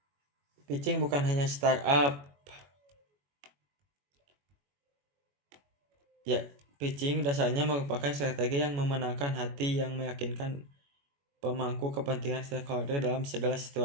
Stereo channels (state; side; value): late; left; 21 ms